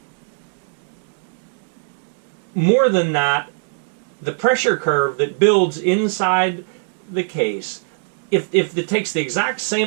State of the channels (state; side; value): silent; left; digital silence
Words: more than that, the pressure curve that builds inside the case, if it takes the exact